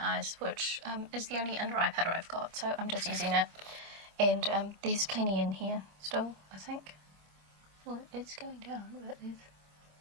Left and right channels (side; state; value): left; late; 26 ms